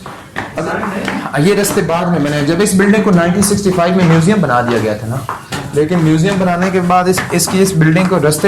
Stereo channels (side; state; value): both; identical; correlation 1.00